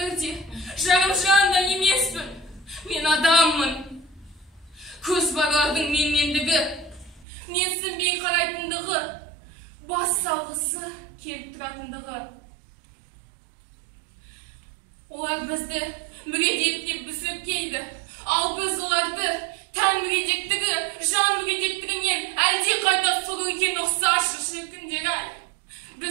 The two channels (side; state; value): left; drops out; at 7.2 s